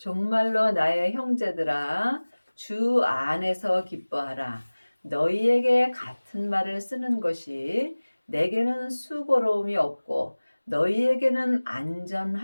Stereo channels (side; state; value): both; inverted; correlation -1.00